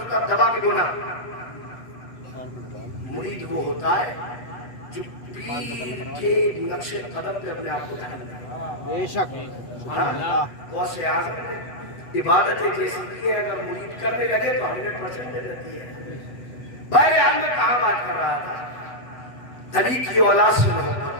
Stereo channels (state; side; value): late; right; 8.0 ms